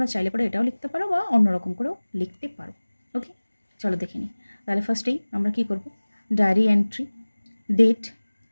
চাইলে পরে এটাও লিখতে পারো বা অন্যরকম করেও লিখতে পারো। ওকে, চলো দেখে নিই। তাহলে ফার্স্টেই আমরা কি করব, ডায়েরি এন্ট্রি, ডেট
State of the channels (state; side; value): inverted; both; correlation -1.00